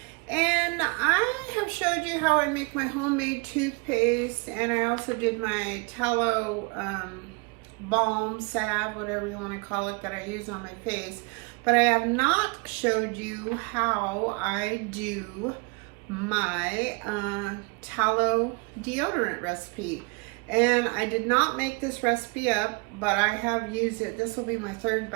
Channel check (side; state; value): left; quieter; 31.5 dB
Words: and I have showed you how I make my homemade toothpaste, and I also did my tallow balm, salve, whatever you want to call it, that I use on my face. But I have not showed you how I do my tallow deodorant recipe. And I did not make this recipe up, but I have used it. This will be my third